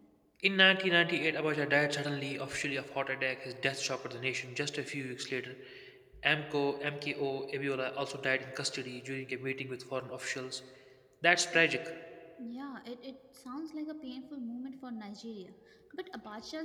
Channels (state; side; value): identical; both; correlation 1.00